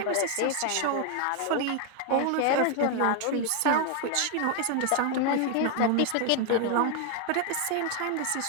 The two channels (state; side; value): different; both; correlation 0.01